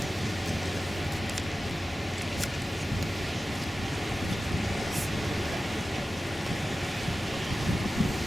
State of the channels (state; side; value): normal; both; correlation 0.94